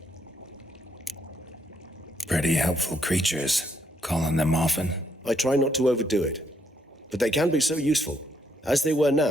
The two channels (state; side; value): normal; both; correlation 0.74